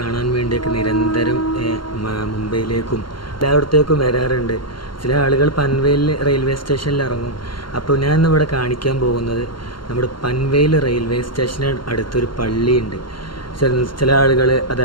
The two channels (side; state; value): right; late; 0.72 ms